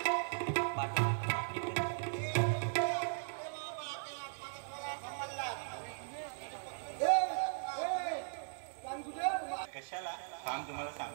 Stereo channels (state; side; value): silent; left; digital silence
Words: कशाला थांब तुम्हाला